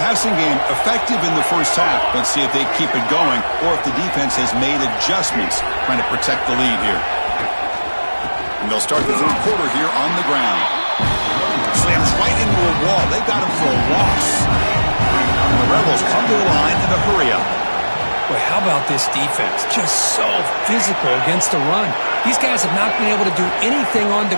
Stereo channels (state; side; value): inverted; both; correlation -1.00